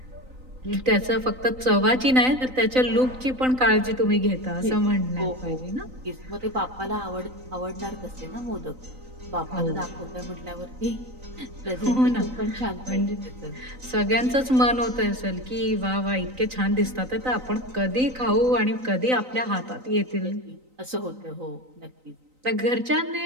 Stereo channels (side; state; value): left; late; 3.9 ms